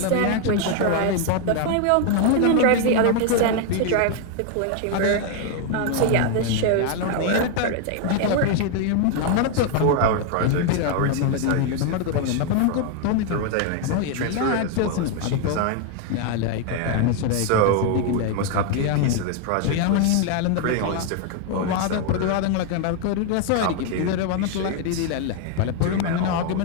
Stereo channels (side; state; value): both; different; correlation 0.00